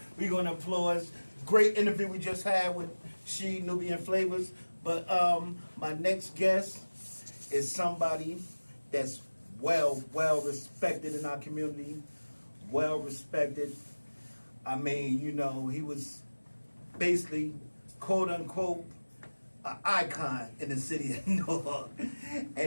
We're going to applaud. Great interview we just had with She Nubian Flavors. But my next guest is somebody that's well respected in our community. Well respected. I mean, you know, he was basically, quote unquote, an icon in the city of Newark.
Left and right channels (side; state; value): both; inverted; correlation -1.00